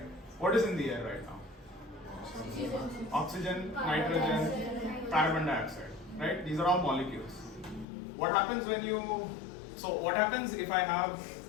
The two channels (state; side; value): drops out; right; at 7.9 s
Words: What is in the air right now? Oxygen, nitrogen, carbon dioxide, right? These are all molecules. What happens when what happens if I have